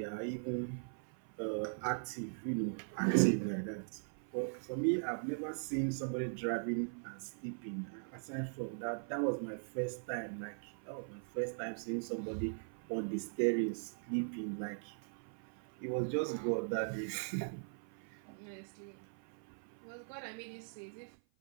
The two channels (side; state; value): left; silent; 51 dB below the other